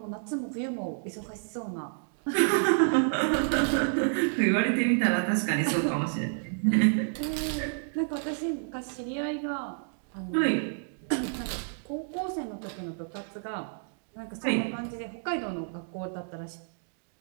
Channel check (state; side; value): silent; left; digital silence